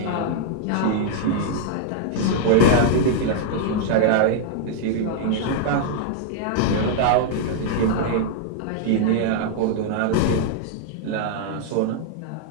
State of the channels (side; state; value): both; different; correlation -0.01